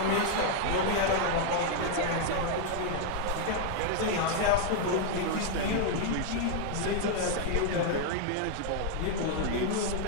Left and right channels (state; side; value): different; both; correlation 0.00